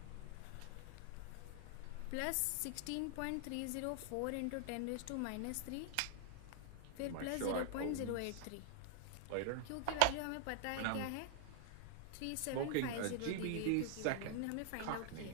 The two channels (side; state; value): both; different; correlation 0.00